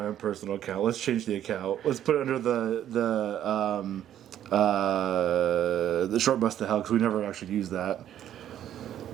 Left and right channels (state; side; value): quieter; left; 11.0 dB